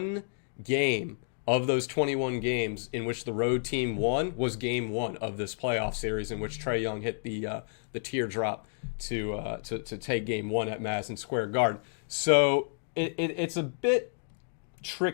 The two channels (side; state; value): right; silent; digital silence